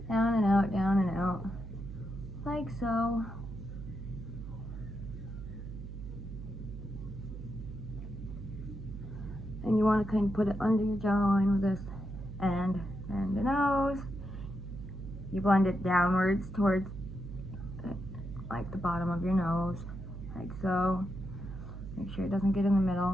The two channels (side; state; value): right; noise; hum, 10 dB below the sound